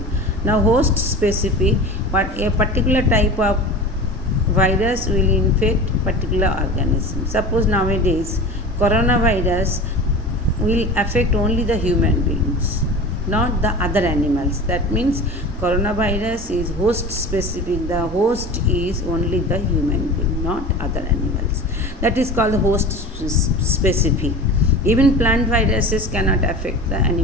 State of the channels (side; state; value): both; normal; correlation 0.34